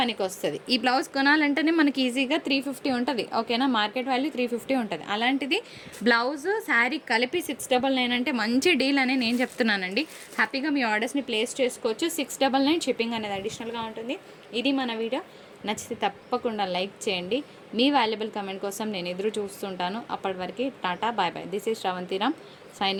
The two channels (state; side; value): identical; both; correlation 1.00